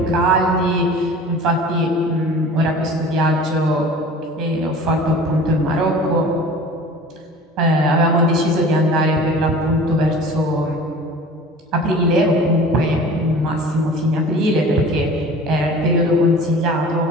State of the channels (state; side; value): normal; both; correlation 0.42